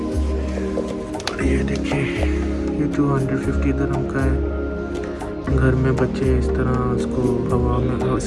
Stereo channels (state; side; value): identical; both; correlation 1.00